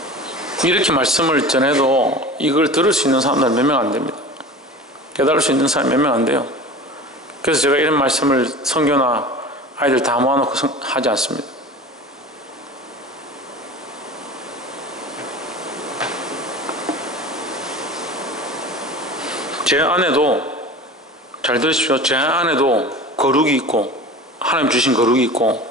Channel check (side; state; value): both; normal; correlation 0.36